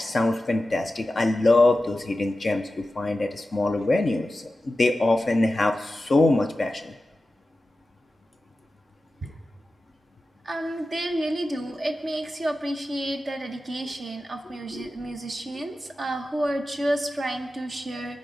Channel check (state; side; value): normal; both; correlation 0.93